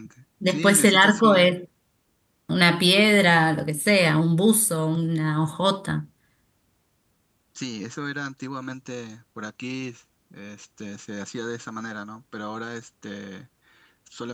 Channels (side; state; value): both; identical; correlation 1.00